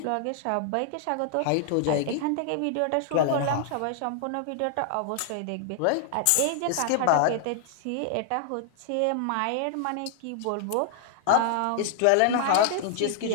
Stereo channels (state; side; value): different; both; correlation 0.00